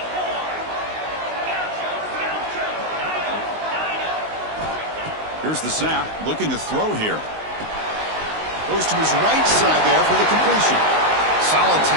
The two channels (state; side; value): late; left; 19 ms